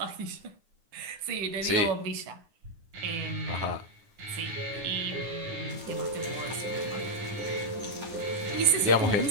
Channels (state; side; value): late; left; 9.9 ms